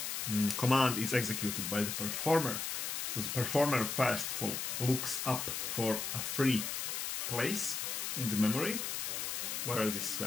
command is executed by the performer? So the performer first of all looks up for a free place in the memory where this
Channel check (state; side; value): noise; left; hiss, 2 dB below the sound